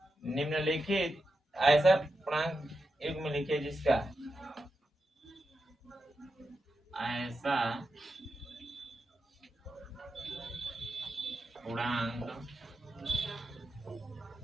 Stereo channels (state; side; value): normal; both; correlation 0.88